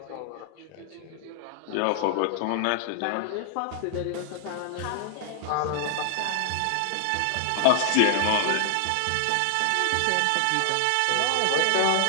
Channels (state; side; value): different; both; correlation 0.00